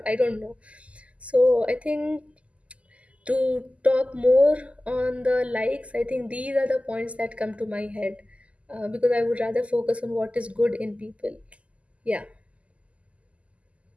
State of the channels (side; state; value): left; late; 0.063 ms